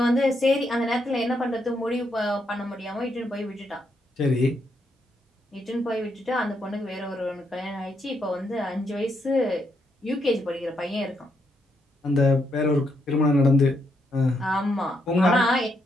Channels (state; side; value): normal; both; correlation 0.78